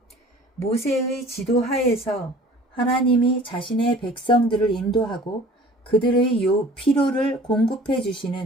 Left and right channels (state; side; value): normal; both; correlation 0.47